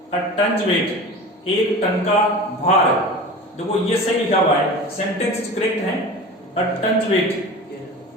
A tons weight, 1 ton का भार। देखो ये सही लिखा हुआ है, सेंटेंस करेक्ट है, अ टन्स वेट,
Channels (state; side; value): normal; both; correlation 0.34